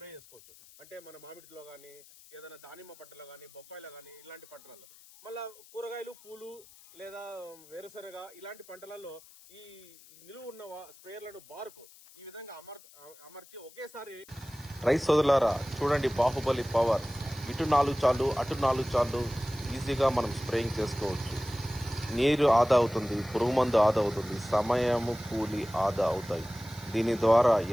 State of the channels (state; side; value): noise; left; hiss, 23 dB below the sound